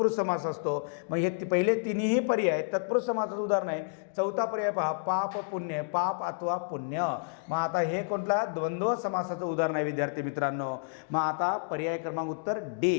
समास असतो. मग हे पहिले तिन्ही पर्याय तत्पुरुष समासाचं उदाहरण आहे. चौथा पर्याय पहा, पाप पुण्य, पाप अथवा पुण्य. मग आता हे कोणता? द्वंद्व समासाचं उदाहरण आहे विद्यार्थी मित्रांनो. मग आता पर्याय क्रमांक उत्तर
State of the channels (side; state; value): right; silent; digital silence